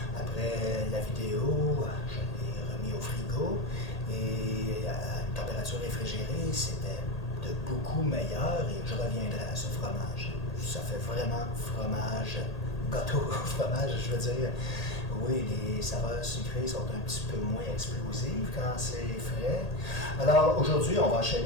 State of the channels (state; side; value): late; right; 1.8 ms